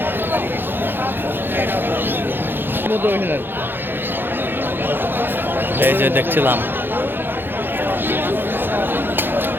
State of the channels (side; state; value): left; late; 0.10 ms